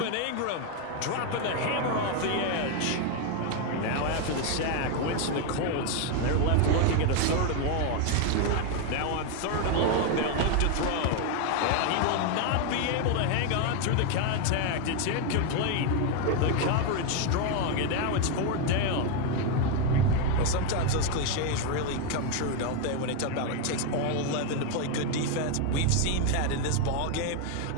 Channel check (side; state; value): both; different; correlation 0.01